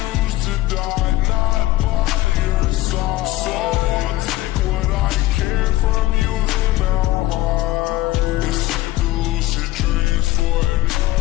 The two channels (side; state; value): right; quieter; 17.0 dB